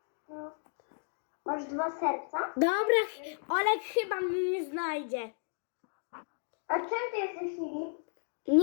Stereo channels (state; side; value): silent; right; digital silence